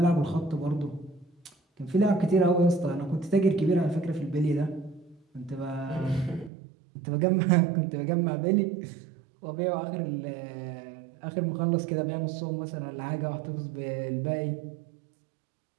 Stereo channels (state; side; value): drops out; left; at 6.5 s